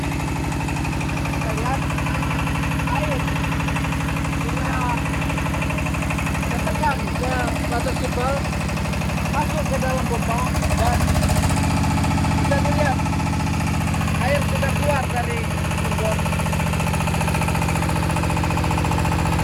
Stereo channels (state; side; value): identical; both; correlation 1.00